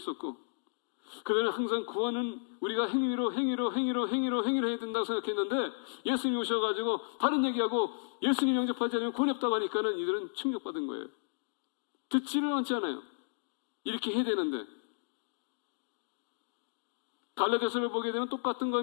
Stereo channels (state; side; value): silent; right; digital silence